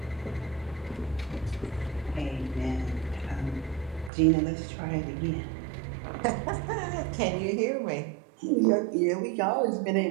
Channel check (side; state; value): left; drops out; at 4.1 s